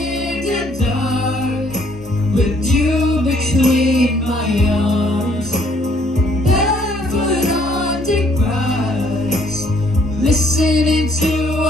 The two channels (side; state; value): both; normal; correlation 0.64